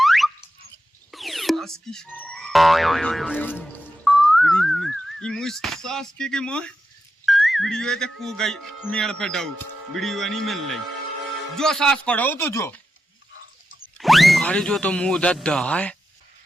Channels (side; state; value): both; normal; correlation 0.89